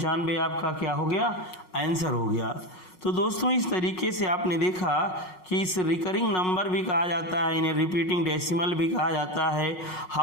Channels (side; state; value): right; late; 5.4 ms